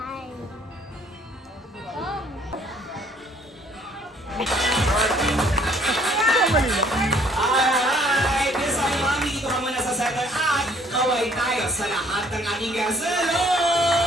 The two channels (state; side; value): normal; both; correlation 0.60